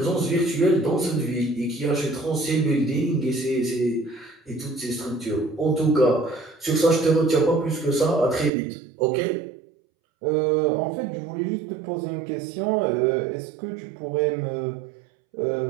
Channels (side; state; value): left; drops out; at 8.5 s